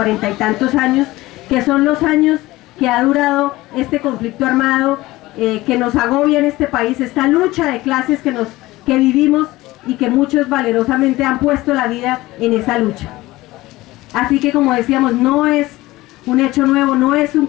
y tantos años, que son los años que ha durado este conflicto armado que nos agobia en este país, esta lucha de clases que vivimos y que muchos valerosamente han puesto la vida en esa lucha. Así que, como decíamos, no es un hecho nuevo, no es un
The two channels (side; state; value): right; quieter; 18.6 dB